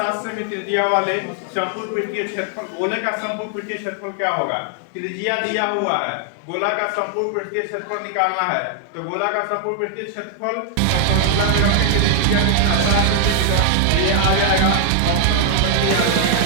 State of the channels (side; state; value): both; different; correlation 0.00